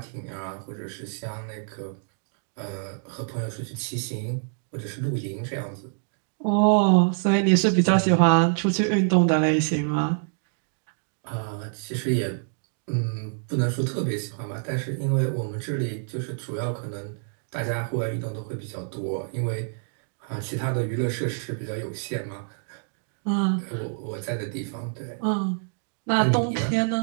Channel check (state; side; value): silent; left; digital silence